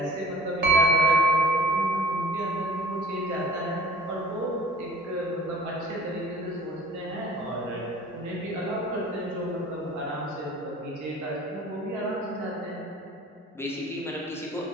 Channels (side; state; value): both; normal; correlation 0.48